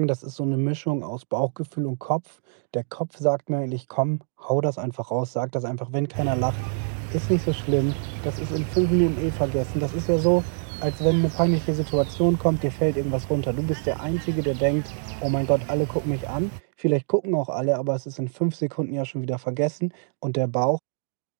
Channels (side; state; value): left; silent; digital silence